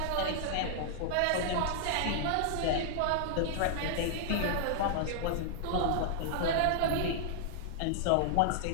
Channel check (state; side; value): different; both; correlation -0.01